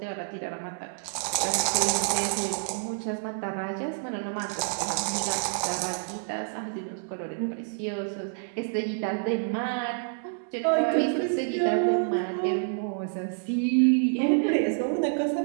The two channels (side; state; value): left; silent; digital silence